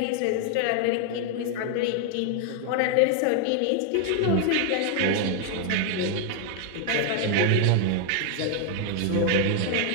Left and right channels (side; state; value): both; different; correlation 0.00